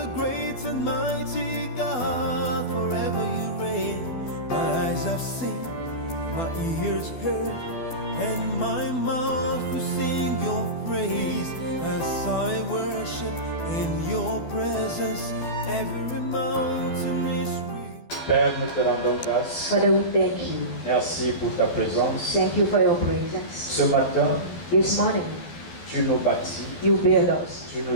great and mighty God, forever you reign. My eyes have seen, my ears heard, and my mouth will sing your praise as I worship in your presence. Every mountain is real. Père, nous te rendons grâce. Father, we thank you. Merci pour ta présence. Thank you for your presence. Ce matin, This morning, tu nous bâtis, you build us, tu nous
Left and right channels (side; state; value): right; late; 12 ms